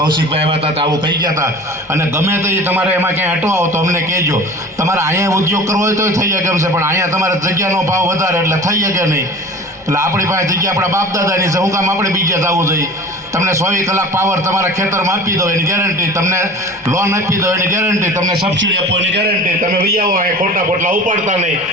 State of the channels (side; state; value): both; normal; correlation 0.39